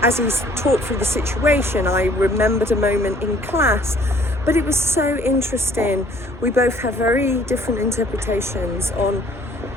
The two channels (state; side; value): normal; both; correlation 0.57